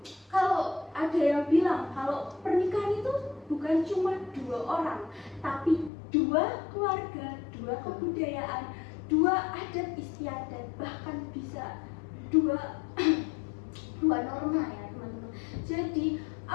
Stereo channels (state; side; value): drops out; right; at 5.9 s